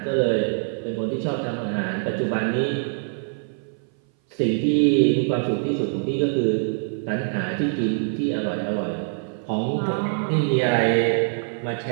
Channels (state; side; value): silent; left; 59 dB below the other